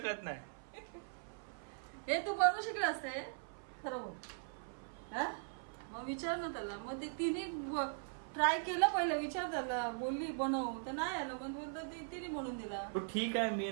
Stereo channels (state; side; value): silent; left; 51 dB below the other